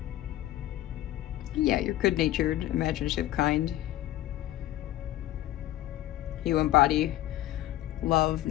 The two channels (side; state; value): right; quieter; 14.4 dB